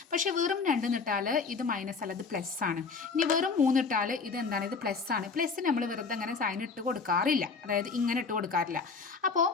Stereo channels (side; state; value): right; quieter; 4.8 dB